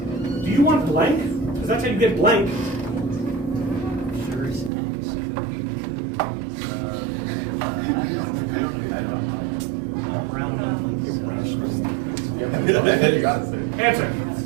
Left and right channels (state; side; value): drops out; left; at 4.7 s